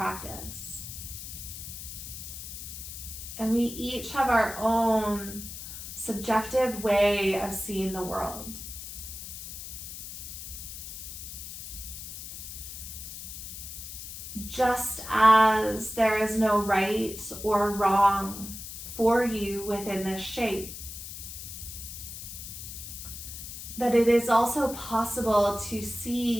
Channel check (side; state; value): left; noise; hiss, 10 dB below the sound